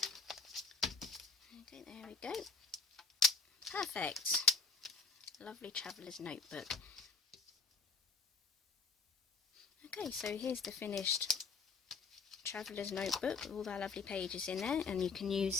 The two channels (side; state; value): right; quieter; 4.6 dB